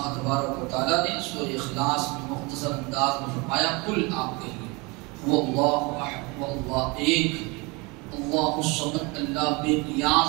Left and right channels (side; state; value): left; quieter; 26.8 dB